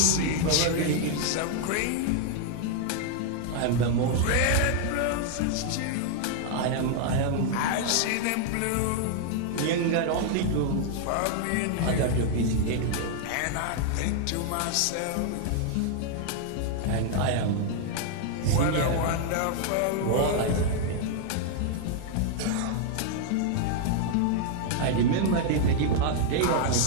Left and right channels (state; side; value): different; both; correlation 0.00